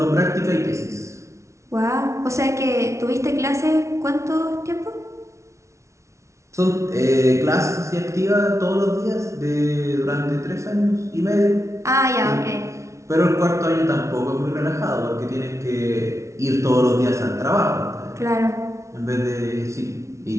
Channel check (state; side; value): late; left; 0.14 ms